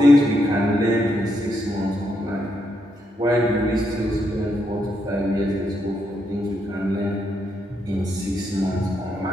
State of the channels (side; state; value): both; normal; correlation 0.79